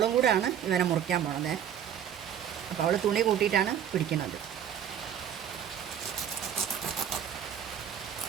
കൂടെയാണ് ഇവനെ മുറിക്കാൻ പോകുന്നത്. അപ്പോൾ അവൾ തുണി കൂട്ടിയിട്ടാണ് പിടിക്കുന്നത്.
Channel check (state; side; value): quieter; left; 9.2 dB